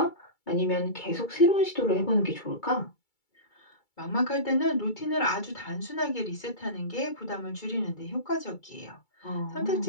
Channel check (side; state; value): right; late; 2.3 ms